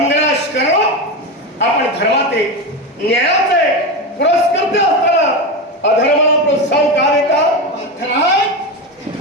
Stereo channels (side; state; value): both; normal; correlation 0.17